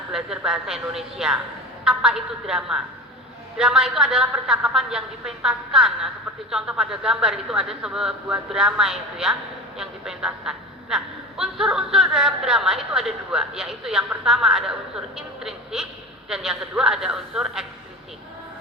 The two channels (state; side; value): normal; both; correlation 0.31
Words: belajar bahasa Indonesia. Apa itu drama? Drama itu adalah percakapan yang dipentaskan. Nah, seperti contoh pada gambar itu ada sebuah drama itu ya, yang dipentaskan. Nah, unsur-unsur dalam drama itu ada dua, yaitu yang pertama ada unsur intrinsik dan yang kedua ada unsur ekstrisik.